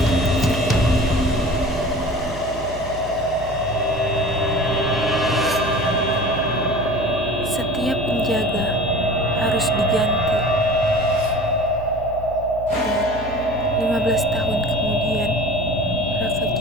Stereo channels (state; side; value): noise; right; hum, 13 dB below the sound